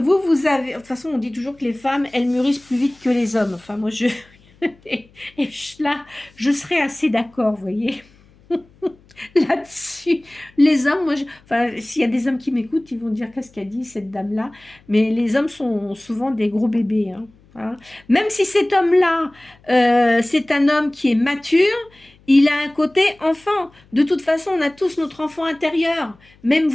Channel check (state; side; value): noise; left; hum, 29 dB below the sound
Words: avez... De toute façon, on dit toujours que les femmes, elles mûrissent plus vite que les hommes. Enfin, moi, et là, je serais assez d'accord, vous voyez. Là-dessus, les hommes, enfin, s'il y a des hommes qui m'écoutent, ils vont dire qu'est-ce qu'a dit cette dame-là. Mais les hommes sont souvent des gros bébés. Hein. Même si cet homme-là, c'est un homme qui est mature, il a un côté enfant. De toute façon, on a tous notre enfant intérieur. Même